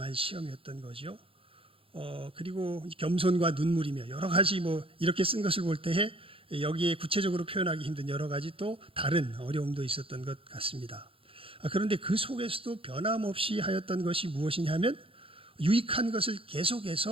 시험이었던 거죠. 그리고 겸손과 눈물이며 여러 가지 뭐 이렇게 쓴 것을 볼 때에 여기에 구체적으로 표현하기 힘든 여러 가지 또 다른 어려움도 있었던 것 같습니다. 그런데 그 속에서도 변함없이 하였던 것이 무엇이냐면 유익한 것을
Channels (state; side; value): late; left; 0.27 ms